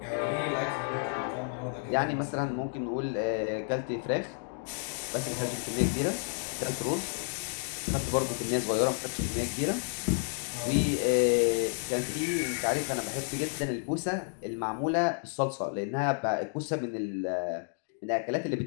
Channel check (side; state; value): right; silent; 57 dB below the other